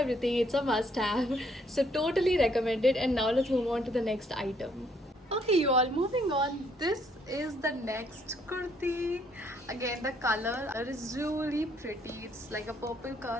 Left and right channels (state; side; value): normal; both; correlation 0.68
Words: It's a must have, so totally recommend it. And now let's move on to the next item. Okay, you all, moving on. This is the next kurti. Again, the color is really pretty. It's like a purple